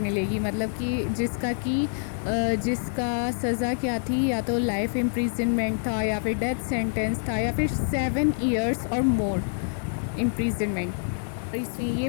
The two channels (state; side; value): silent; right; digital silence